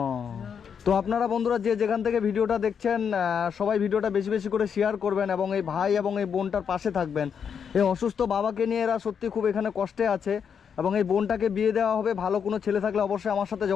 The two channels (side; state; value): right; quieter; 7.2 dB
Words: তো আপনারা বন্ধুরা যে যেখান থেকে ভিডিওটা দেখছেন সবাই ভিডিওটা বেশি বেশি করে শেয়ার করবেন এবং এই ভাই এবং এই বোনটার পাশে থাকবেন। এই অসুস্থ বাবাকে নিয়ে এরা সত্যি খুব এখানে কষ্টে আছে এবং এই বোনটাকে বিয়ে দেওয়া হবে। ভালো কোনো ছেলে থাকলে অবশ্যই আমার সাথে